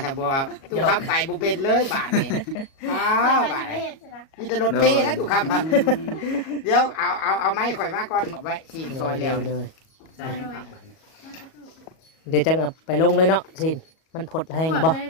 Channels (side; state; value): right; late; 37 ms